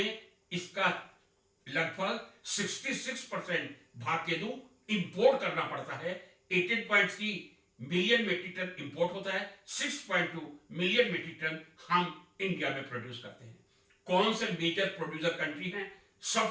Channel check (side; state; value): both; identical; correlation 1.00